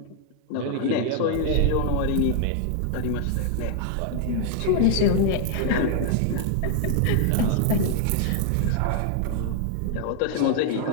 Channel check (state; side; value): different; both; correlation 0.00